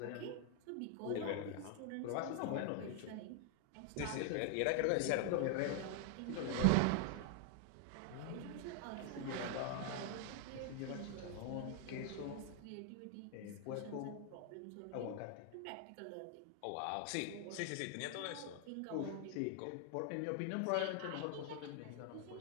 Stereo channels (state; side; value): different; both; correlation 0.00